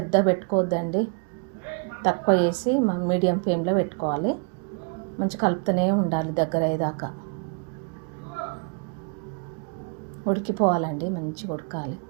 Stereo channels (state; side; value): quieter; left; 38.9 dB